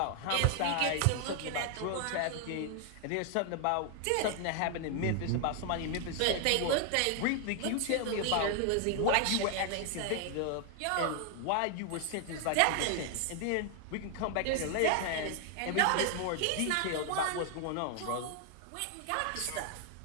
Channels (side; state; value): both; different; correlation 0.00